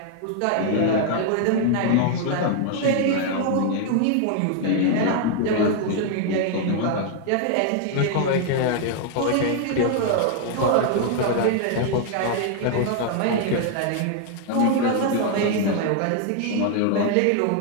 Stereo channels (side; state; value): both; different; correlation 0.00